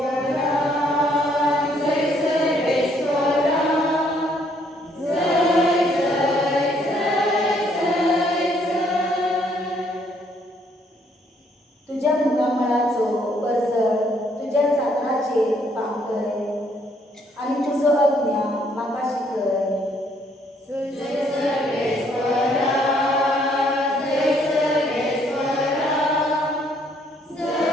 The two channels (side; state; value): both; normal; correlation 0.67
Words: तुज्या मुखामळाचो परजड तुज्या चांदराचेर पांगय आनी तुजो अज्ञा म्हाका शिकय.